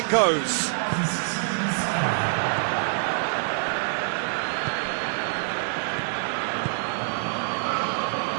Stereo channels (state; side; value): silent; left; digital silence